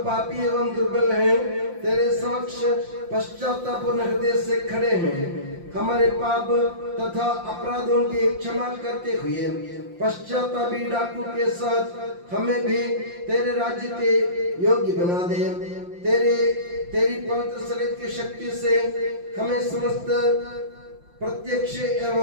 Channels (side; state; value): left; late; 5.7 ms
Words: पापी एवं दुर्बल हैं, तेरे समक्ष पश्चातापूर्ण हृदय से खड़े हैं। हमारे पाप तथा अपराधों की क्षमा करते हुए पश्चातापी डाकू के साथ हमें भी तेरे राज्य के योग्य बना दे। तेरी पवित्र शरीर की शक्ति से हमें समस्त प्रत्यक्ष